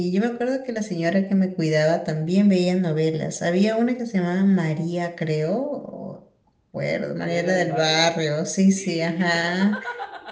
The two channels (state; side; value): identical; both; correlation 1.00